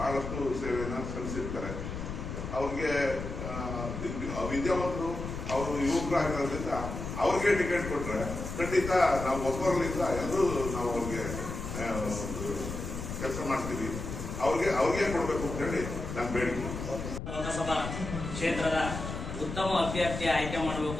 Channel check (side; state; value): left; noise; rumble, 6 dB below the sound